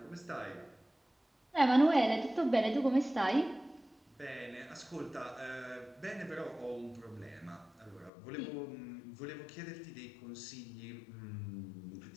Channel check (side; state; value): right; drops out; at 8.1 s